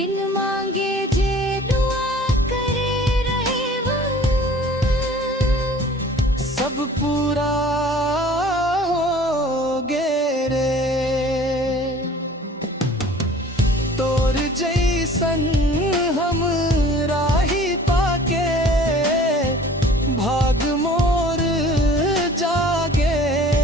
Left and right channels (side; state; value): both; normal; correlation 0.48